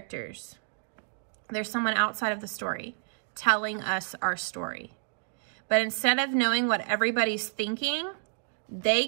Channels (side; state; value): left; silent; digital silence